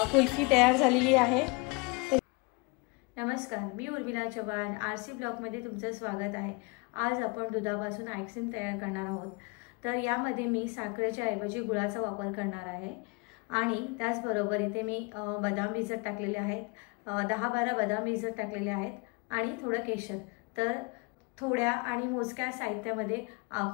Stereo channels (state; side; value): quieter; right; 29.0 dB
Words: कुल्फी तयार झालेली आहे। नमस्कार, मी उर्मिला चव्हाण, आरसी ब्लॉगमध्ये तुमचं स्वागत आहे। आज आपण दुधापासून आईस्क्रीम तयार करणार आहोत। तर यामध्ये मी साखरेच्या ऐवजी गुळाचा वापर करणार आहे आणि त्याचबरोबर इथे मी बदाम भिजत टाकलेले आहेत, 10-12 बदाम भिजत टाकलेले आहेत आणि थोडं केशर। तर थोड्या आणि मोजक्या साहित्यामध्ये